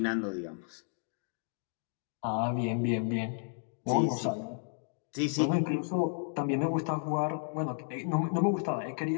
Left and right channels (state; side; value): silent; right; 56 dB below the other